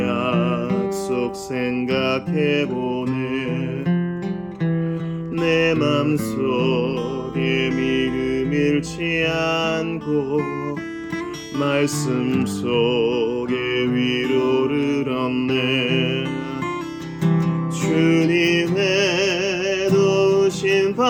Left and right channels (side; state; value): both; identical; correlation 1.00